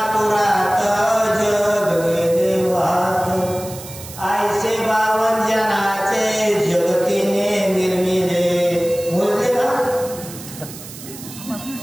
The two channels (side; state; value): right; noise; hiss, 14 dB below the sound